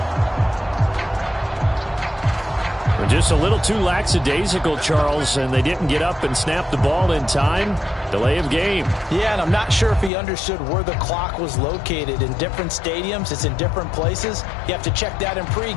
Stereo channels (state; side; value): drops out; right; at 10.1 s